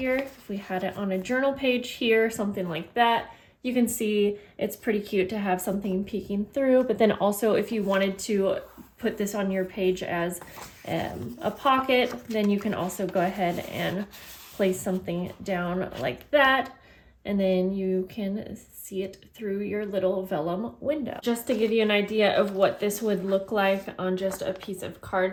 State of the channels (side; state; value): both; identical; correlation 1.00